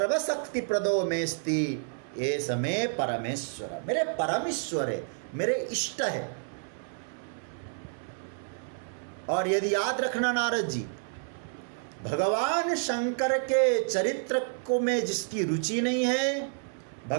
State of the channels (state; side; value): silent; left; 58 dB below the other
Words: प्रदो मेस्ति ये समय परमेश्वर। मेरे परमेश्वर है, मेरे इष्ट है। और यदि याद रखना नारद जी, भगवान शंकर के चरित्र को में जिसकी रुचि नहीं है,